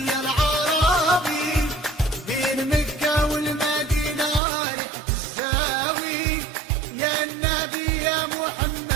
يا العربي. بين مكة والمدينة رحت الزاوي، يا النبي يا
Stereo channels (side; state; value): left; drops out; at 4.4 s